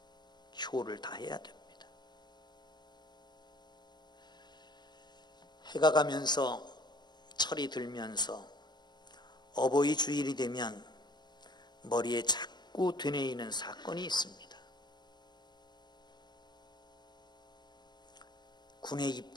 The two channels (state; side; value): late; right; 0.21 ms